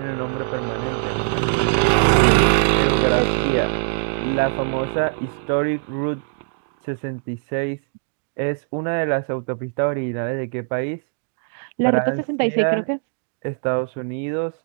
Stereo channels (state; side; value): silent; left; digital silence